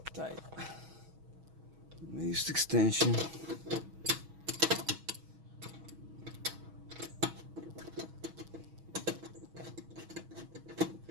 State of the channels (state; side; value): late; left; 6.2 ms